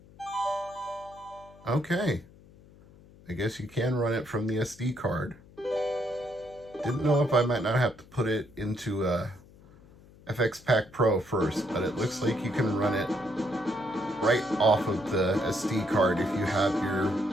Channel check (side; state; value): left; noise; hum, 24 dB below the sound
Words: Okay. I guess you can run it from the SD card. Didn't know if I might not have to put it into FX Pack Pro first, but it looks like you can run it right off of the SD card if you have your